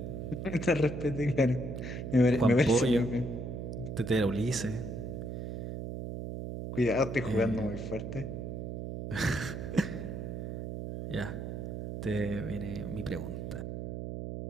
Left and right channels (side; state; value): right; noise; hum, 6 dB below the sound